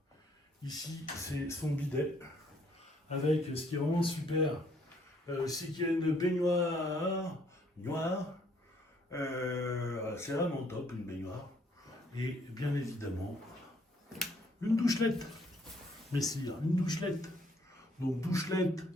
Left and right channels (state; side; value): normal; both; correlation 0.66